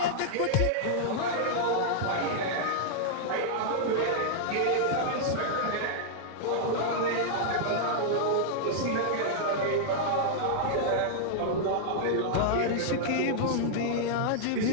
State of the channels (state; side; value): different; both; correlation -0.01